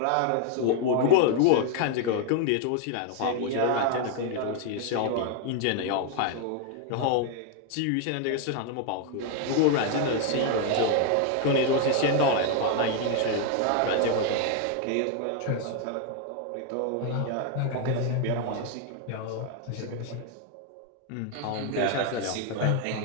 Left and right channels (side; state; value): both; different; correlation 0.00